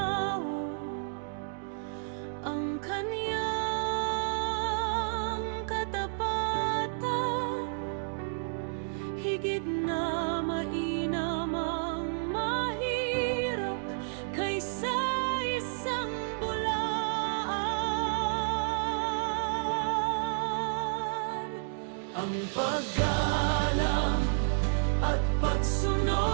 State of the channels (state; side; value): silent; left; digital silence